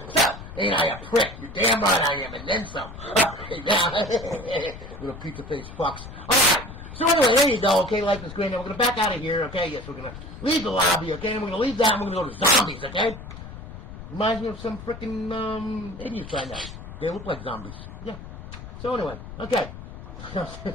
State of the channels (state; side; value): noise; left; rumble, 13 dB below the sound